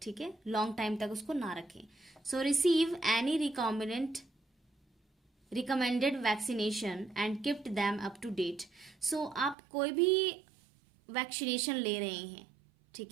ठीक है, लॉन्ग टाइम तक उसको ना रखें। So receive any recommended vaccination and keep them up to date. So आप कोई भी वैक्सीनेशन ले रहे हैं,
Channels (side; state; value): left; drops out; at 9.6 s